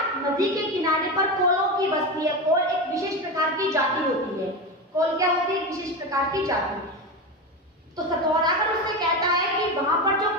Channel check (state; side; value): normal; both; correlation 0.19